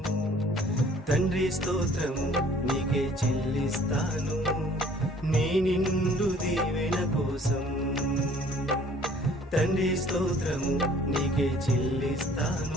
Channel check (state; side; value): normal; both; correlation 0.55